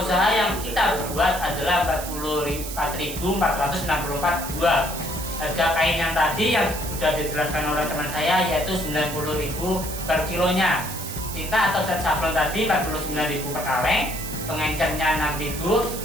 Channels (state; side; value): noise; right; hiss, 9 dB below the sound